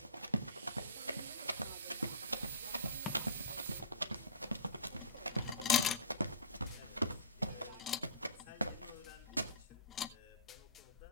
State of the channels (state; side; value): inverted; both; correlation -0.34